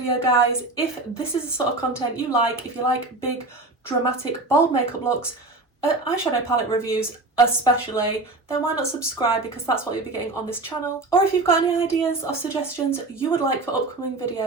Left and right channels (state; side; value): quieter; left; 3.1 dB